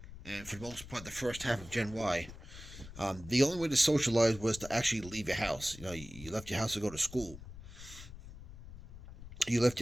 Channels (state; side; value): noise; left; rumble, 15 dB below the sound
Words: and for the most part the first half of Gen Y, the only way to socialize was to actually leave your house. You left your house to go to school. You left